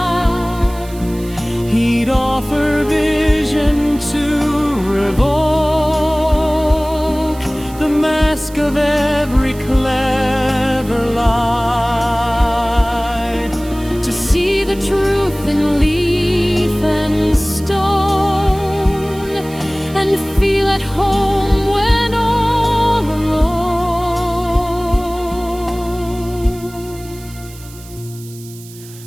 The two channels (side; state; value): right; noise; hiss, 20 dB below the sound